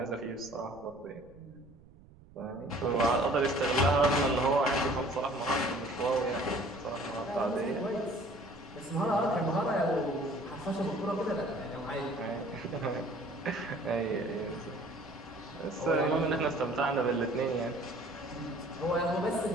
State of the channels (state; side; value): noise; right; rumble, 24 dB below the sound